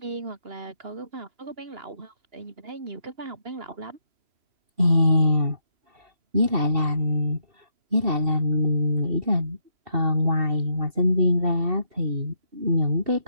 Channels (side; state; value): left; late; 2.7 ms